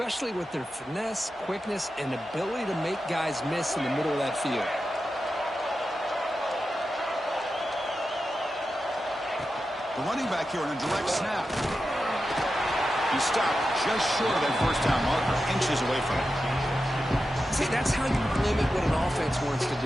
with their finesse, quickness, and ability to make guys miss in the middle of that field. The running back here on a direct snap. He stopped just short of that first down marker, inches away from it. See, that's how you limit what an offense wants to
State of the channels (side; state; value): both; normal; correlation 0.91